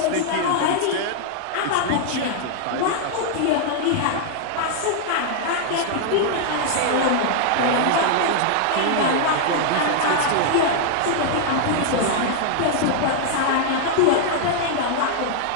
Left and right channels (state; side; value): different; both; correlation -0.01